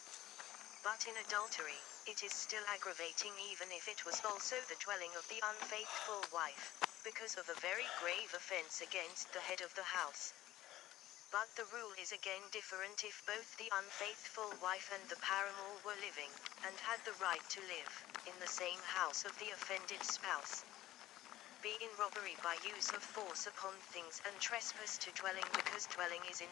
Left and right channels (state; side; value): quieter; right; 15.0 dB